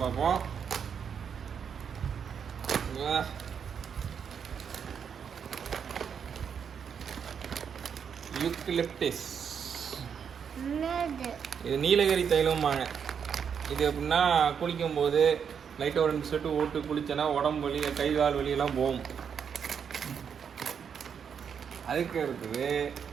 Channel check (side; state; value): left; quieter; 7.2 dB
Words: பார்ப்போம். யூக்கலிப்டஸ், இது நீலகிரி தைலம்பாங்க. இது எப்படின்னா குளிக்கும் போது லைட்டாக ஒரு 2 செட்டு ஓட்டு குளிச்சேன்னா உடம்பு வலி, கை கால் வலியெல்லாம் போகும். அதுக்கு